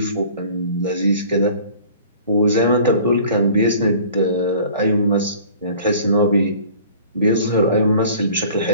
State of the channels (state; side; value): inverted; both; correlation -0.47